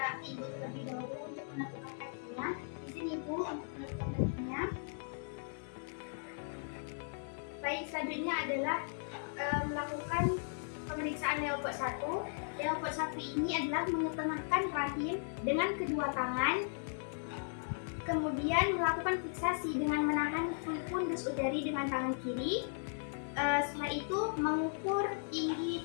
ibu terlebih dahulu untuk menentukan kakinya. Di sini ibu untuk menentukan kakinya. Baik, selanjutnya adalah melakukan pemeriksaan leopard 1. Leopard 1 ini adalah mengetengahkan rahim dengan kedua tangan. Kemudian melakukan fiksasi dengan menahan fundus udari dengan tangan kiri. Setelah itu mengukur tinggi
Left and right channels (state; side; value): silent; right; 53 dB below the other